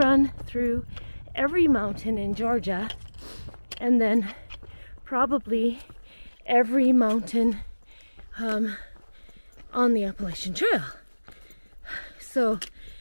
through every mountain in Georgia, and then probably every mountain on the Appalachian Trail. So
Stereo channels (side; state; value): both; inverted; correlation -1.00